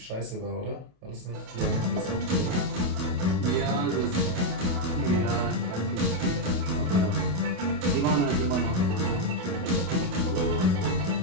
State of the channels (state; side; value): late; left; 28 ms